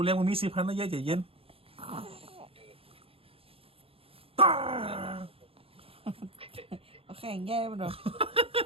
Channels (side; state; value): left; late; 0.27 ms